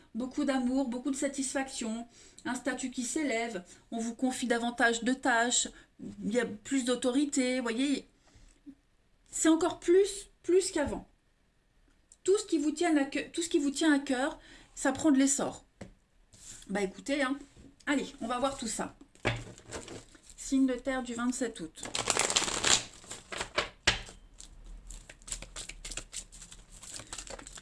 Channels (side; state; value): both; identical; correlation 1.00